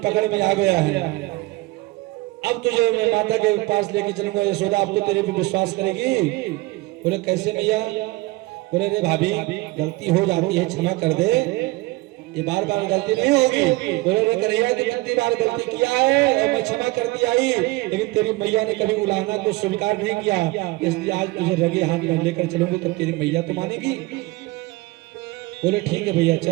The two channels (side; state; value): left; quieter; 21.3 dB